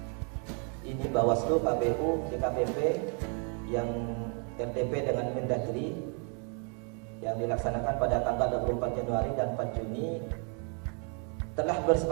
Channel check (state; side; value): quieter; left; 39.0 dB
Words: ini Bawaslu, KPU, DKPP, yang RTP dengan Mendagri yang dilaksanakan pada tanggal 24 Januari dan 4 Juni telah